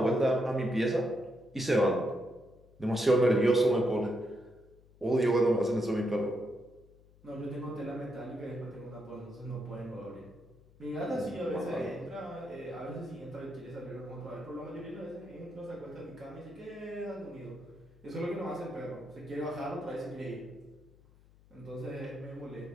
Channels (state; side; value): noise; left; hum, 26 dB below the sound